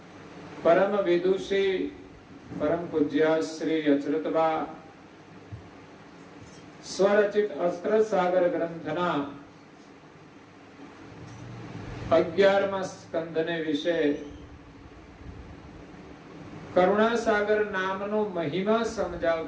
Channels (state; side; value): identical; both; correlation 1.00